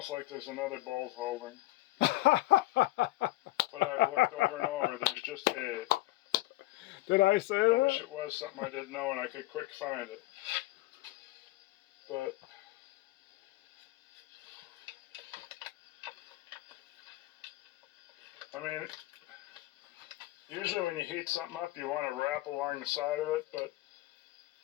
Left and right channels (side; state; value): right; quieter; 18.1 dB